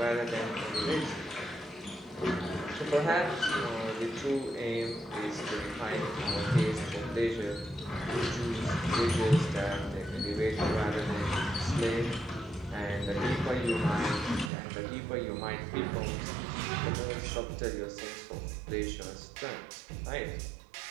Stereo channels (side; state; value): left; drops out; at 14.5 s